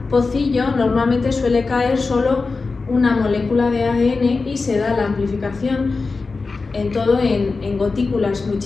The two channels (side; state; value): right; quieter; 4.1 dB